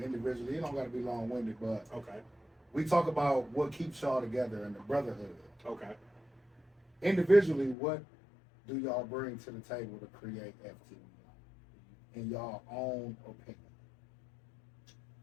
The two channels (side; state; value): right; drops out; at 7.8 s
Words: individually. It don't gotta be long-winded, but okay. We talk about what keeps y'all together and the brotherhood. Okay. Individually, what do y'all bring to the table to create FTV in y'all own opinion?